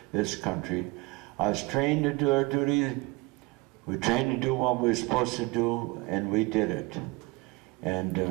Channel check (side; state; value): left; quieter; 24.3 dB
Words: country. I was trained to do our duty. We trained to do what we were supposed to do, and we did it. And